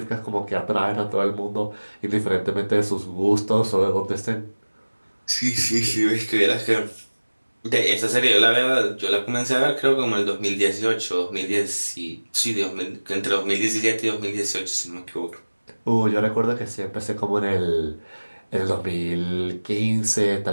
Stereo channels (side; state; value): both; inverted; correlation -1.00